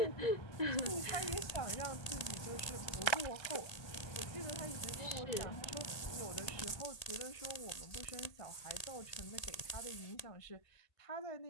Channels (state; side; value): late; right; 1.8 ms